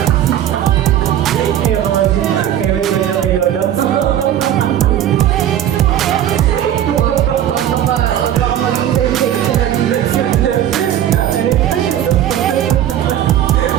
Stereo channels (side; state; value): left; quieter; 11.1 dB